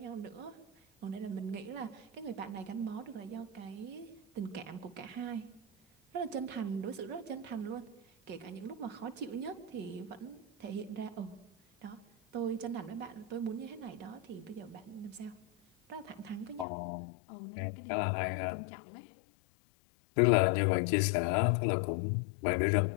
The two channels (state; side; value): drops out; right; at 16.7 s